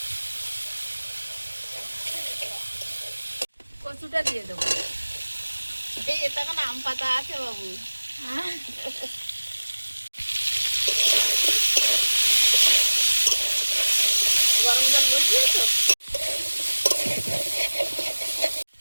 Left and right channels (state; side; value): inverted; both; correlation -1.00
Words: কচুটা দিয়ে দেবো। এই এটা কেন আম পাতা আছে বাবু? গরম জল বসিয়েছো?